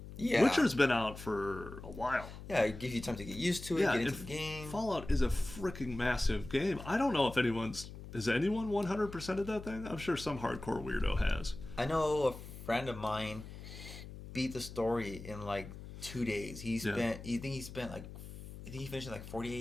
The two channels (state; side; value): noise; left; hum, 12 dB below the sound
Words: Yeah. Witcher's been out for a while. Yeah, it gives you time to get used to it, get into the game. Fallout is a freaking massive game. I don't know if has anyone 100%ed that thing? I'm sure some hardcore weirdo has. I know a friend of mine beat the story in like 2 days. He finished in like